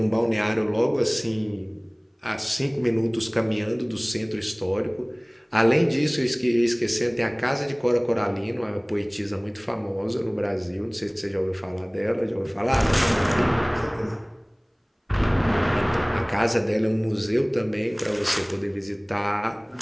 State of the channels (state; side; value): identical; both; correlation 1.00